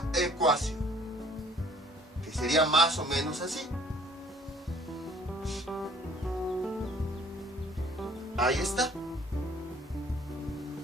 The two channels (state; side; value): normal; both; correlation 0.56